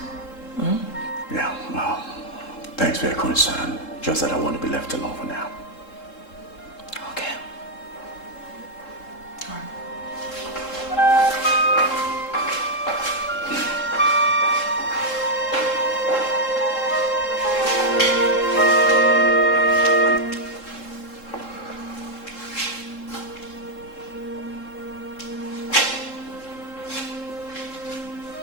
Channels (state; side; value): late; right; 3.7 ms